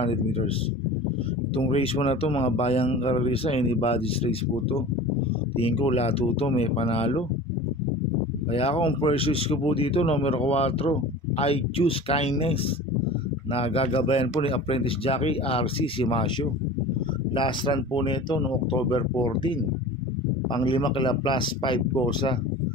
meters. Itong race mo na to mga bayang karalisa, anybody's race po to. Tingin ko lahat to may panalo. Kaya ako ang purchase ko po dito, numero 4, I Choose Kindness, na gagabayan po ni apprentice jockey RC Simasio. Last run po nito noong October 14. Ang 5 kila plus 5 kosa.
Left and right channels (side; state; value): both; normal; correlation 0.37